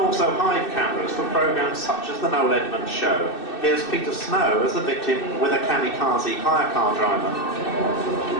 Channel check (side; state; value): right; late; 2.6 ms